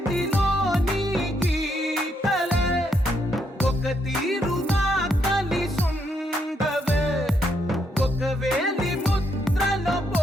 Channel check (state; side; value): normal; both; correlation 0.76